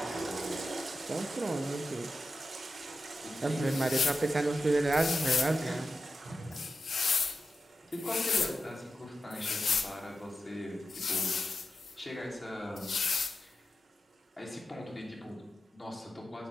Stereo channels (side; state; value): both; normal; correlation 0.90